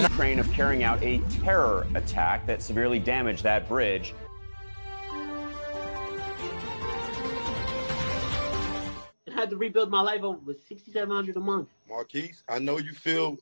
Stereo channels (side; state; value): both; inverted; correlation -1.00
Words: Ukraine of carrying out a terror attack that severely damaged that bridge. I had to rebuild my life over with $6,700 a month. Marquise, I know you feel